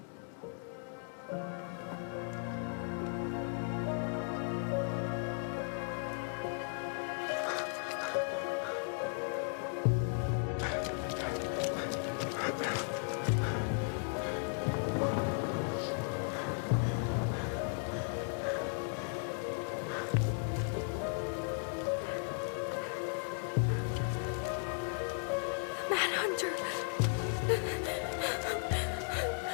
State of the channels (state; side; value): silent; right; 54 dB below the other